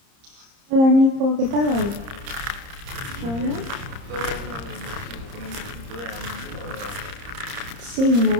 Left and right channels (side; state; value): left; late; 30 ms